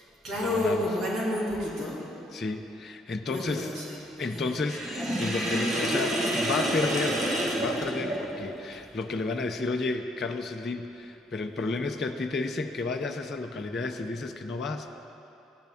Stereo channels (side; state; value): both; normal; correlation 0.68